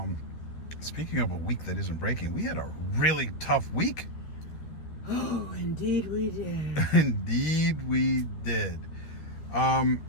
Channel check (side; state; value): right; late; 12 ms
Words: Speaking of a week that isn't breaking, we had a really tough week. Oh, indeed we did. Indeed we did.